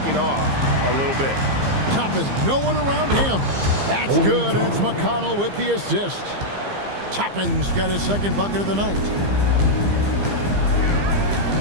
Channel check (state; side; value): late; left; 15 ms